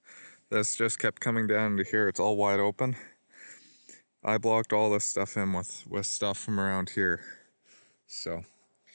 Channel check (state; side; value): inverted; both; correlation -1.00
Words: This just kept coming down to here. It's all wide open. I blocked all this stuff in with stuff from around here. So